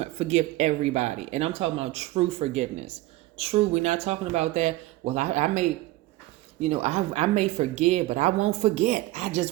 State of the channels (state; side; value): quieter; left; 18.0 dB